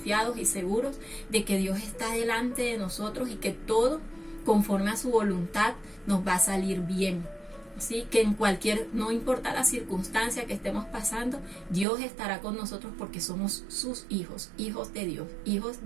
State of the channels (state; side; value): drops out; left; at 11.9 s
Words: y seguros de que Dios está delante de nosotros y que todo, conforme a su voluntad, nos va a salir bien. Así que no importa la circunstancia que estemos pasando, Dios estará con nosotros porque somos sus hijos, hijos de Dios, hijos